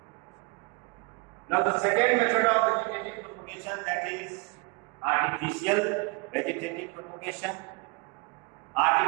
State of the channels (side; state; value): left; quieter; 29.1 dB